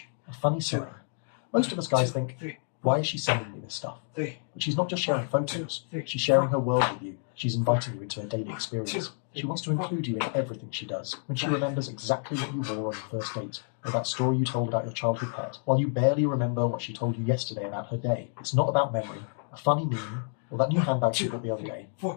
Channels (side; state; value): right; silent; 58 dB below the other